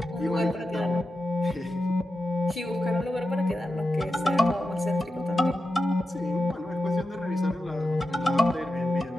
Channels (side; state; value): both; normal; correlation 0.90